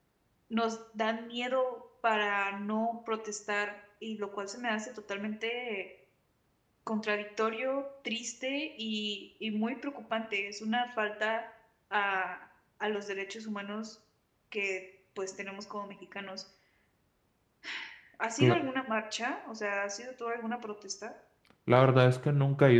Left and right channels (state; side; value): identical; both; correlation 1.00